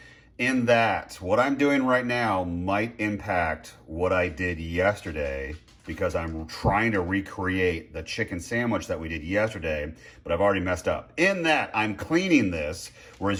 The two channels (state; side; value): identical; both; correlation 1.00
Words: in that what I'm doing right now might impact what I did yesterday, because I'm trying to recreate the chicken sandwich that we did yesterday, but I've already messed up. In that I'm cleaning this,